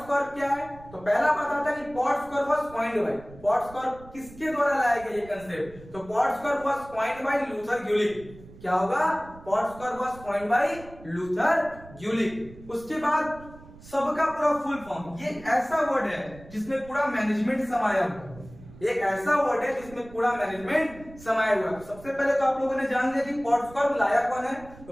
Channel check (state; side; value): noise; right; rumble, 19 dB below the sound